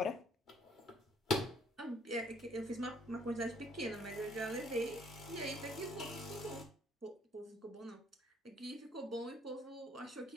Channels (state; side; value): normal; both; correlation 0.63